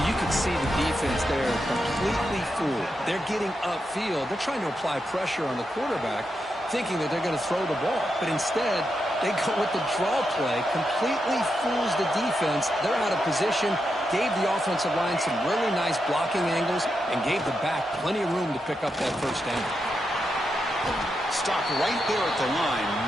you can see the defense there completely fooled. They're getting upfield. They're trying to apply pressure on the quarterback, thinking that they're going to throw the ball. But instead, they go with the draw play, completely fools the defense. They're out of position, gave the offensive line some really nice blocking angles, and gave the back plenty of room to pick up that first down. Stop right there at the line.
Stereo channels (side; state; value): both; normal; correlation 0.85